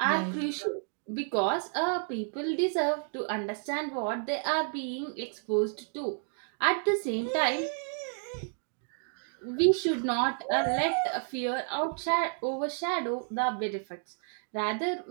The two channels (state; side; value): silent; left; 57 dB below the other